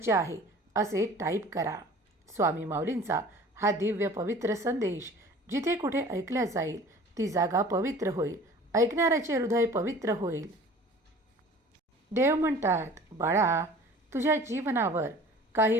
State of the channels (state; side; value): normal; both; correlation 0.46